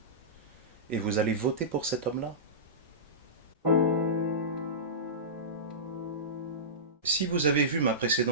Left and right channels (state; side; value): normal; both; correlation -0.19